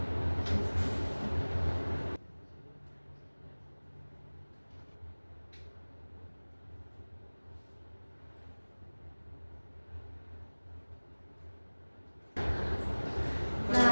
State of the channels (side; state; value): both; inverted; correlation -1.00